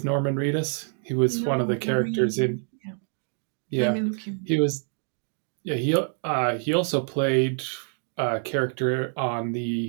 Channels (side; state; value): left; silent; 61 dB below the other